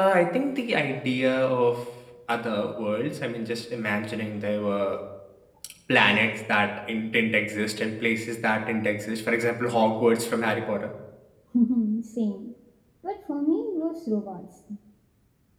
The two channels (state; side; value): identical; both; correlation 1.00